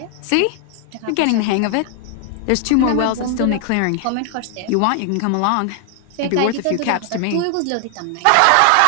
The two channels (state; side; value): different; both; correlation 0.00